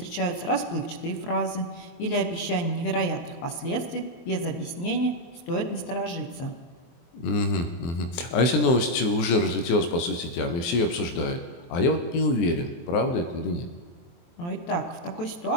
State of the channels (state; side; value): late; right; 23 ms